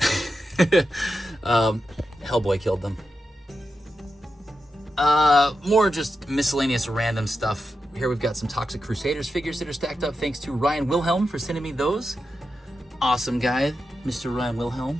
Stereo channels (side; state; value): both; normal; correlation 0.89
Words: Hellboy killed them. More just miscellaneous random stuff. Here we've got some Toxic Crusaders figures that are stacked up. Thanks to Ryan Wilhelm for sending me those. Awesome guy, Mr. Ryan